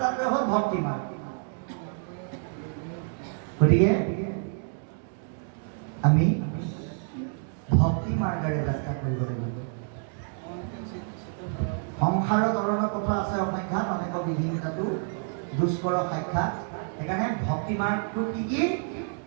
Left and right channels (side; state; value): left; silent; 59 dB below the other